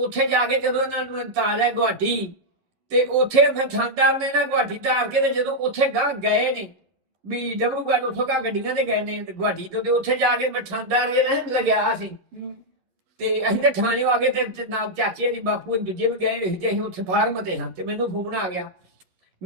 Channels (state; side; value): late; left; 11 ms